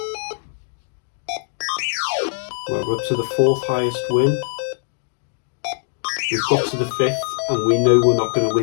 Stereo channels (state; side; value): silent; right; digital silence